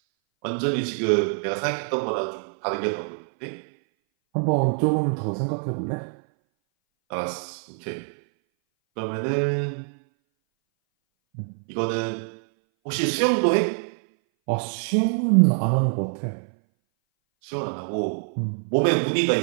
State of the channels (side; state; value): left; silent; 59 dB below the other